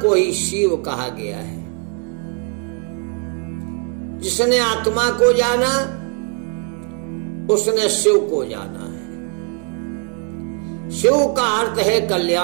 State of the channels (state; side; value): quieter; left; 39.6 dB